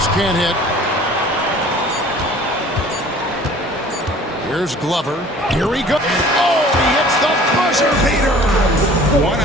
can't hit. Here's Glover. Here we go. Oh, he hits the buzzer beater. One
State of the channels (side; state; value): both; normal; correlation 0.48